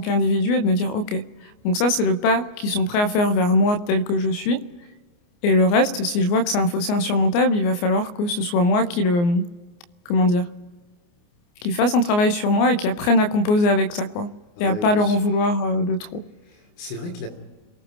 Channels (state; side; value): late; right; 29 ms